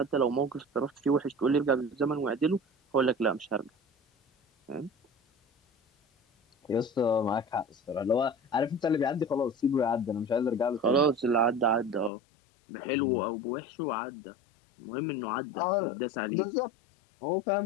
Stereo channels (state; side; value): drops out; right; at 12.1 s